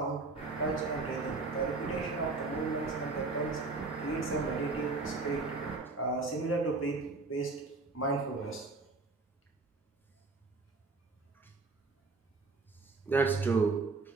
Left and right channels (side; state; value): left; quieter; 3.7 dB